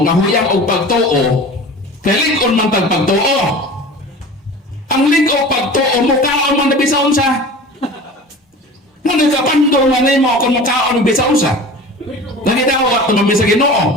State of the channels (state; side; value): normal; both; correlation 0.38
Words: nga huyang o pagtuo kay lig-on man tag pagtuo. Ang lig o pagtuo mukaon man na bisaon sa. Nga nagkapandol man nimo kung mukaon bisaon sa. Nagidawat naman sa